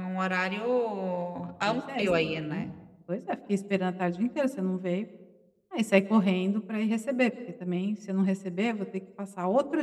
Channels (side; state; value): both; identical; correlation 1.00